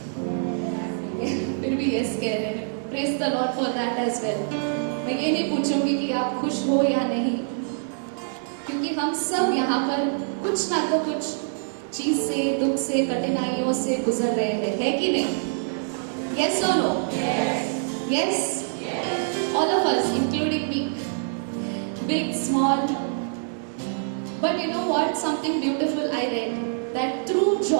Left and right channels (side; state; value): left; silent; digital silence